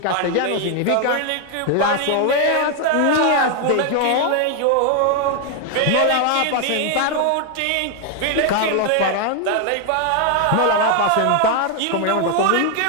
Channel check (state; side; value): different; both; correlation 0.01